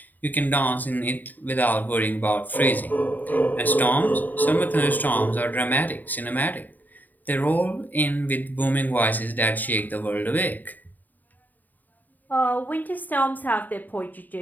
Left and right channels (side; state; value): right; late; 0.086 ms